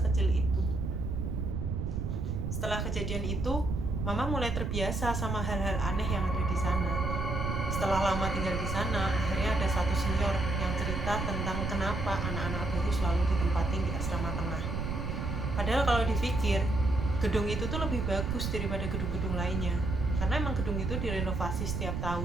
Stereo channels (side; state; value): right; noise; rumble, 3 dB below the sound